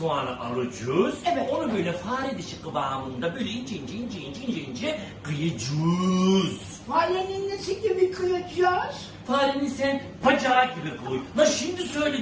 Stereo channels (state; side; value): identical; both; correlation 1.00